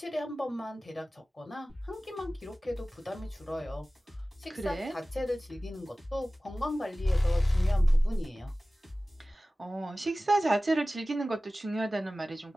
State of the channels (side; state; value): both; normal; correlation 0.97